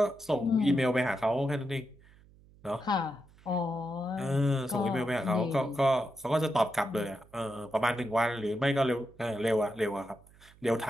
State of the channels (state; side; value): noise; right; hum, 26 dB below the sound